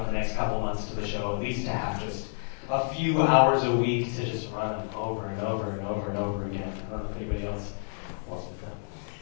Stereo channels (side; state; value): right; silent; digital silence